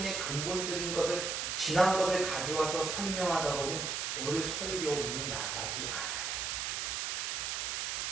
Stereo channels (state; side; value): noise; right; hiss, 1 dB below the sound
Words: 근본적인 것을 지난 것을 가져와서 설명하다 보면 오늘 설교문이 나가지 않아요.